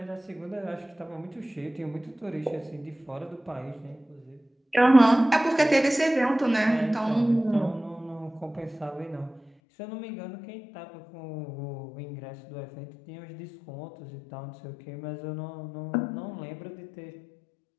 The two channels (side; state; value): right; drops out; at 9.5 s